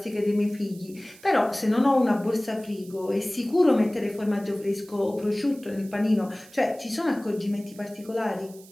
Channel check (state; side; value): noise; right; hiss, 23 dB below the sound